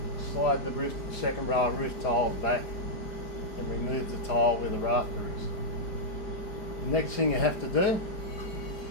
slide the second row of roof tiles back and remove the tile where the rafter is. The next thing you have to do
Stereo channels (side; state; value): right; late; 4.9 ms